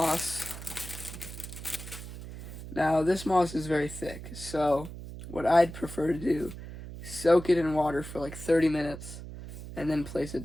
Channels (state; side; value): noise; right; hum, 11 dB below the sound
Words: Now, this moss is very thick, so what I'd prefer to do, soak it in water for like 30 minutes, and then place it